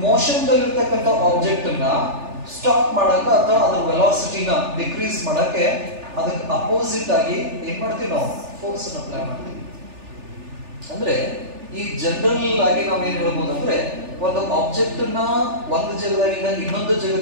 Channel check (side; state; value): left; late; 3.4 ms